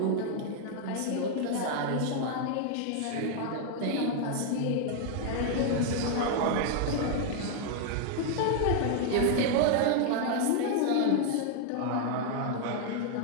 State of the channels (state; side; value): different; both; correlation 0.00